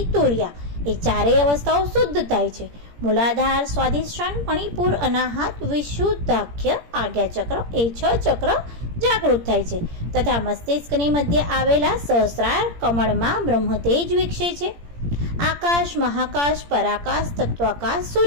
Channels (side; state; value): left; late; 17 ms